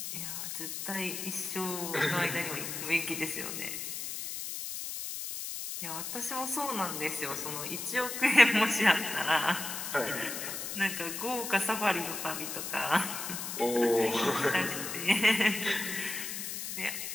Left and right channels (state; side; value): noise; left; hiss, 5 dB below the sound